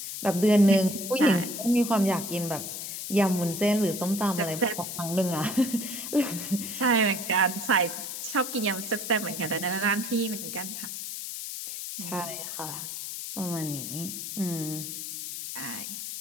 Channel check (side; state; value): left; noise; hiss, 7 dB below the sound